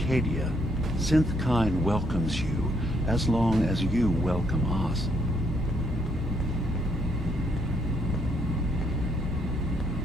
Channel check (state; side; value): normal; both; correlation 0.72